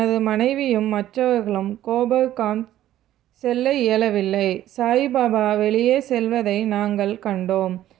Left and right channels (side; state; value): left; quieter; 13.0 dB